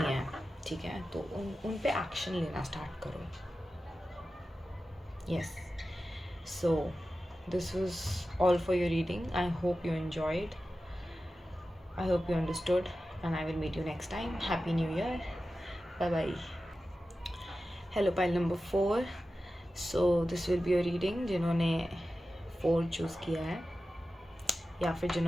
ठीक है, तो उन पे एक्शन लेना स्टार्ट करो। Yes, so this was all for your reading. I hope you enjoyed, I hope you understood, and I will meet you next time. Happy New Year. Bye bye. Hello, pile number 4. So this will be a reading जिन्होंने 4 choose किया है या फिर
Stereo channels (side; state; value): both; normal; correlation 0.93